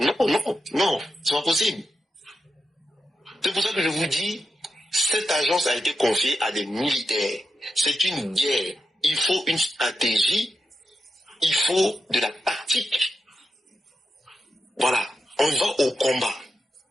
Non, c'est pas possible. C'est pour ça que je vous dis, cette agence a été confiée à des militaires. C'est une guerre. Il faut une stratégie, il faut de la tactique. Voilà, on va au combat.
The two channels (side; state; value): both; normal; correlation 0.87